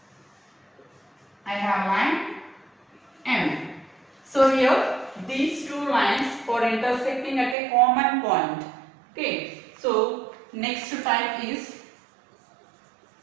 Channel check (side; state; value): left; drops out; at 7.6 s